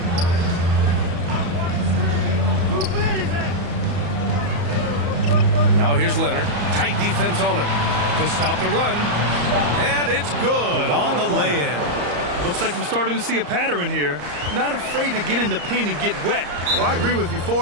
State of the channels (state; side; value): late; left; 34 ms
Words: Now here's Leonard. Tight defense on him to stop the run. And it's good on the lay-in. Looks like we're starting to see a pattern here. Not afraid to get in the paint and get wet. Well, I agree with you.